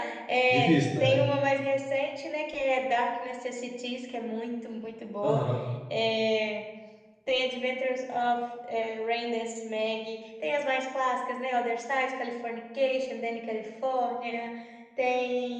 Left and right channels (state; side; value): identical; both; correlation 1.00